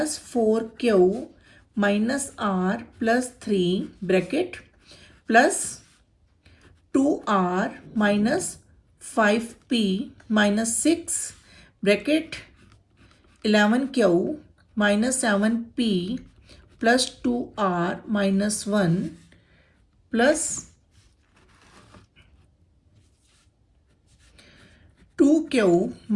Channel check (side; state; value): both; identical; correlation 1.00